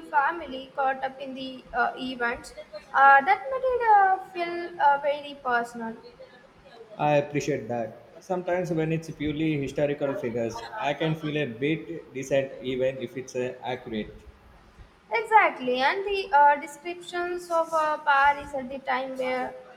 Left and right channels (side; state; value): both; identical; correlation 1.00